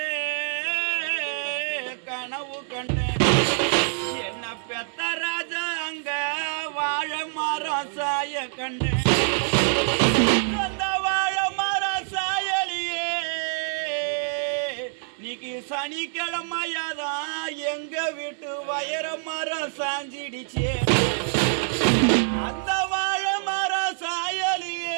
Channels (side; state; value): left; silent; digital silence